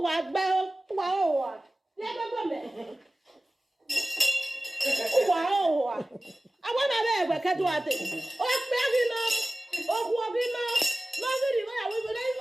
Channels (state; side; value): normal; both; correlation 0.97